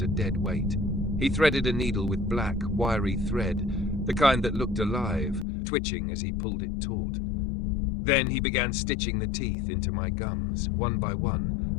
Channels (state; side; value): drops out; right; at 5.5 s